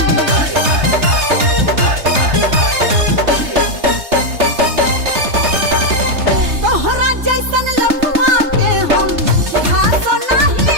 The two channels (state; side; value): late; left; 3.3 ms